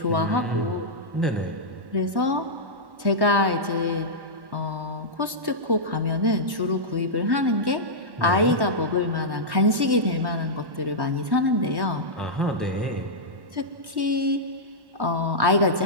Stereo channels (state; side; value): late; left; 1.1 ms